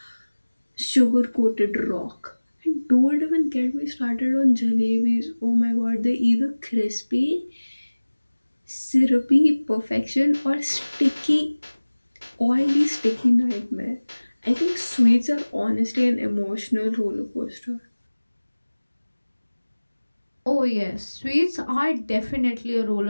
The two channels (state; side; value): inverted; both; correlation -1.00